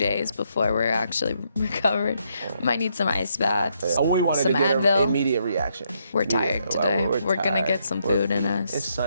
before we're actually recovered. We might need some ice baths. We wanted to get an immediate reaction. We're tired today. We're gonna get some food in us. It's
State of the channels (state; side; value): inverted; both; correlation -0.76